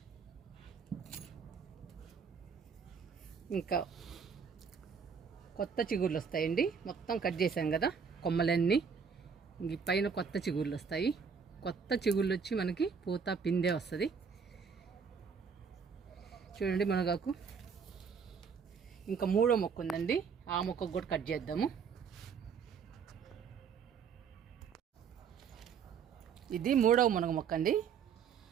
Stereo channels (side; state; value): left; quieter; 6.3 dB